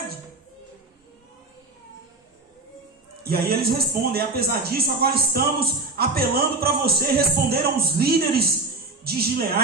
E aí eles respondem, apesar disso, agora estamos apelando para você. Responderam os líderes de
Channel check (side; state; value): left; quieter; 3.4 dB